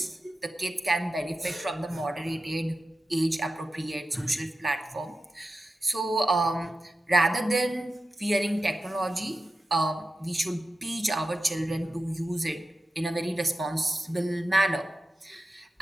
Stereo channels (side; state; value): both; normal; correlation 0.93